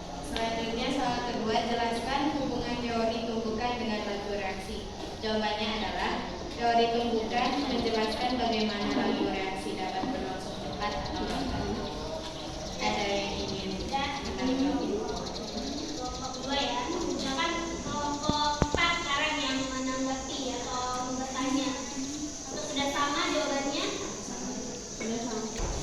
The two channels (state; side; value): identical; both; correlation 1.00